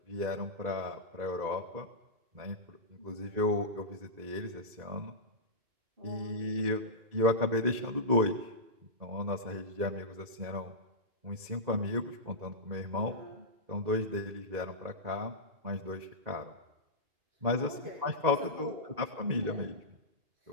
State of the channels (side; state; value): left; late; 1.8 ms